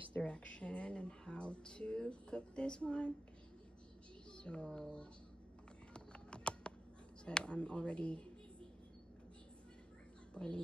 direction and how to cook this one. So I'm already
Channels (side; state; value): both; normal; correlation 0.90